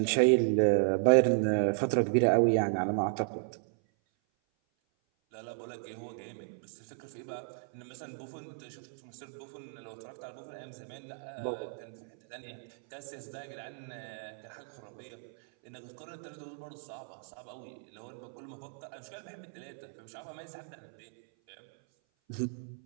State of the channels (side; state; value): left; silent; 55 dB below the other